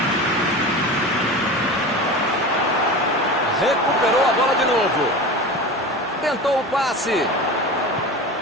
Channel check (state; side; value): normal; both; correlation 0.30